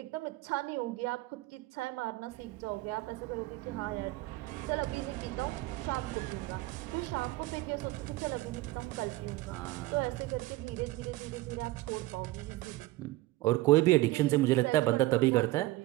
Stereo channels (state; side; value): quieter; left; 18.1 dB